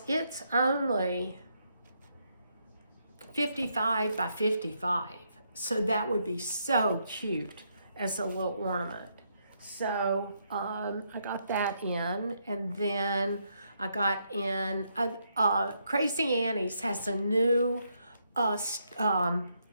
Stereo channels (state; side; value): inverted; both; correlation -0.77